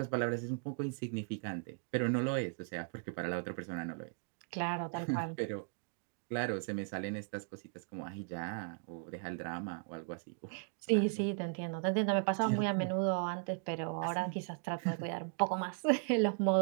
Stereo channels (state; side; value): silent; left; 53 dB below the other